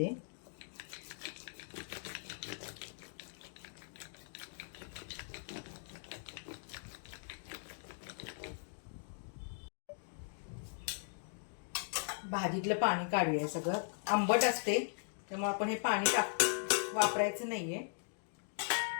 भाजीतलं पाणी काढूया. सगळं आंबट असते त्यामुळे आपण हे पाणी वापरायचं नाहीये.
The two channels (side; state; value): right; silent; digital silence